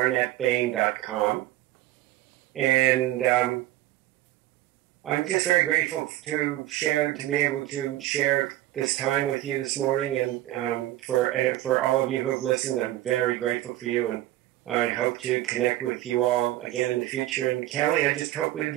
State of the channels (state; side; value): quieter; left; 15.3 dB